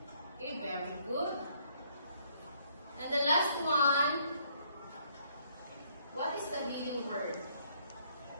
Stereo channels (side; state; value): both; inverted; correlation -0.67